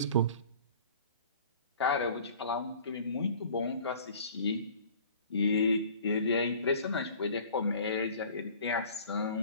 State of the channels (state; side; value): inverted; both; correlation -0.48